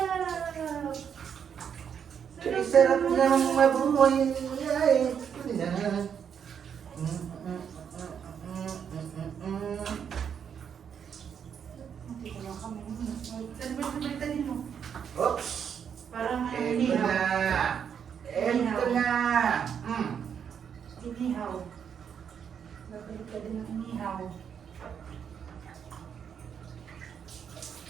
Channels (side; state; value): left; quieter; 7.7 dB